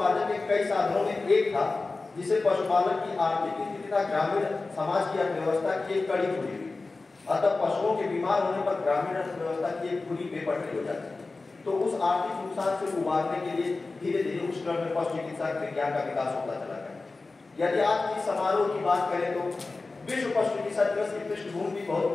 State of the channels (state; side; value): quieter; right; 3.6 dB